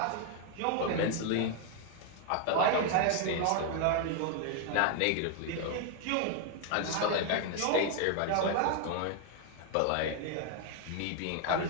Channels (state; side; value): different; both; correlation 0.00